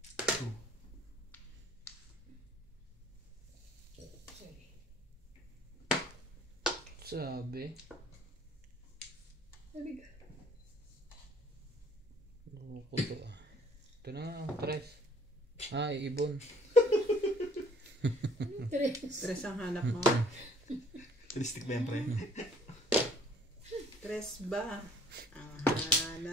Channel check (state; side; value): normal; both; correlation 0.58